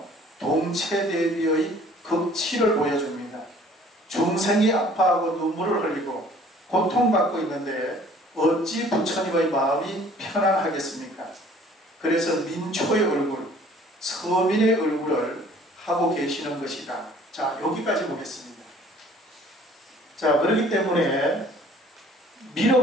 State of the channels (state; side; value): normal; both; correlation 0.54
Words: 동체대비의 극치를 보여줍니다. 중생이 아파하고 눈물을 흘리고 고통받고 있는데 어찌 부처님의 마음이 편안하겠습니까? 그래서 민초의 얼굴, 서민의 얼굴을 하고 계시는 것이다. 자, 여기까지 보겠습니다. 자, 그렇기 때문에